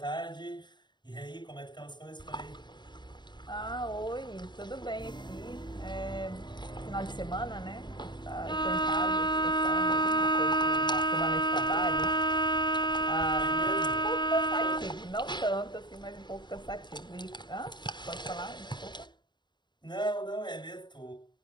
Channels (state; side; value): late; right; 0.22 ms